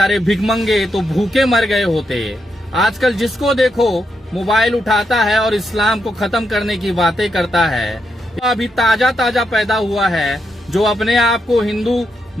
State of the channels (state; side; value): normal; both; correlation 0.82